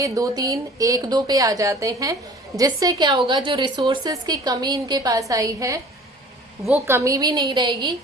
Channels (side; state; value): both; normal; correlation 0.47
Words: 2-3, 1-2 पे आ जाते हैं, जिससे क्या होगा, जो रिसोर्सेज की कमी इनके पास आई है वो कमी भी नहीं रहेगी